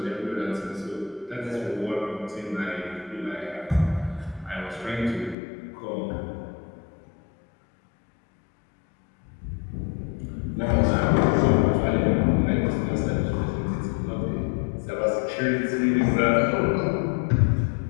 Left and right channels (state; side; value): drops out; right; at 5.4 s